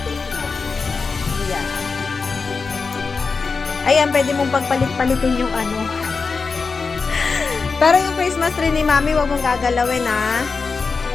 Yeah. Ayan, pwede mong pagpalit-palitin yung ano. Pero yung Christmas tree ni Mami, huwag mong gagalawin, ha?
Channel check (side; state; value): right; quieter; 4.7 dB